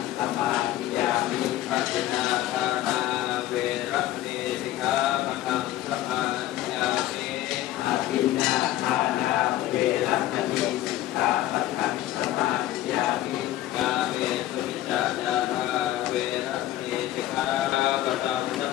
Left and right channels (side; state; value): right; quieter; 14.1 dB